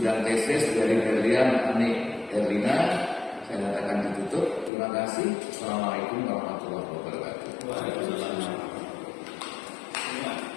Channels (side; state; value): right; drops out; at 4.7 s